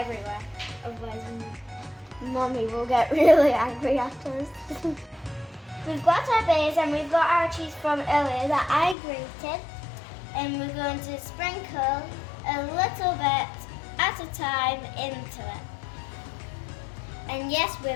Otherwise, Mummy will get really angry at us. We've got our base and we've got our cheese from earlier that I grated. And we're going to sprinkle a little bit at a time into it. And yes,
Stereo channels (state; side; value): drops out; right; at 9.0 s